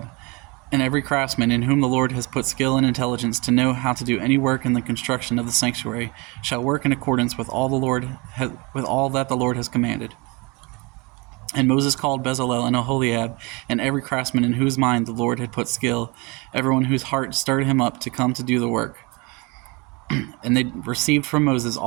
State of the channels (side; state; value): left; quieter; 27.6 dB